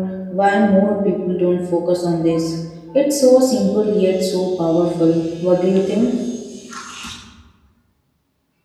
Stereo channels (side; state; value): both; identical; correlation 1.00